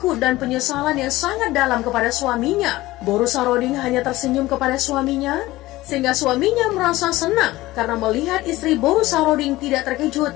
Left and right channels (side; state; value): right; quieter; 18.0 dB